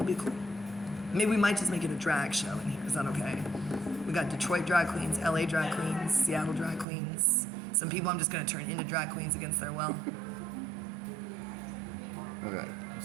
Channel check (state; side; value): drops out; left; at 6.9 s